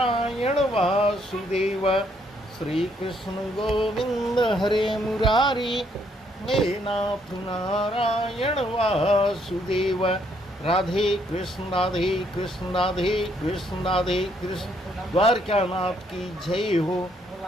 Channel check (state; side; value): normal; both; correlation 0.70